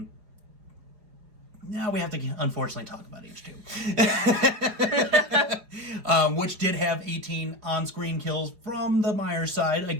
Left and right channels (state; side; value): late; left; 4.8 ms